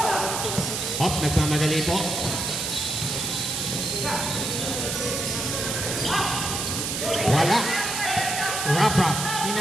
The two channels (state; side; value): noise; right; hiss, 2 dB below the sound